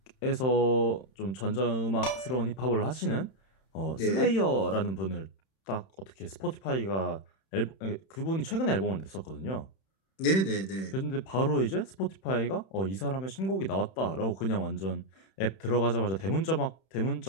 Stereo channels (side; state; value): right; late; 31 ms